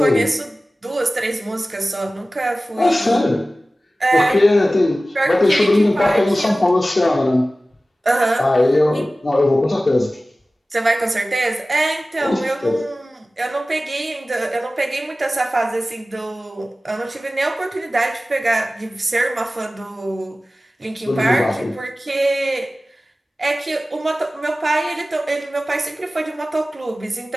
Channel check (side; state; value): both; normal; correlation 0.96